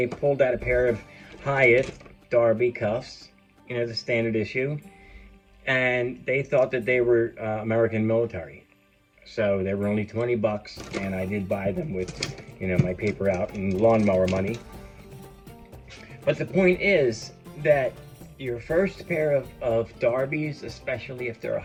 pulled out a pair of Hiatt Darby cuffs, the standard issue, and they thought that they were American military. So they were only 20 bucks, and I did buy them with, my paper out and lawnmower money. But the point is that your first pair of Darbies, especially if they're a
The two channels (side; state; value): both; identical; correlation 1.00